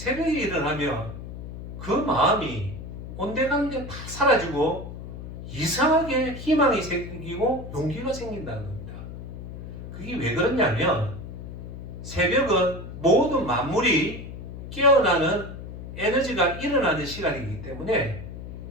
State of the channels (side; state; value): left; noise; hum, 10 dB below the sound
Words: 일어나면 그 마음이 온데간데 다 사라지고 이상하게 희망이 생기고 용기가 생긴다는 겁니다. 그게 왜 그러냐면 새벽은 모든 만물이 깨어나는 에너지가 일어나는 시간이기 때문에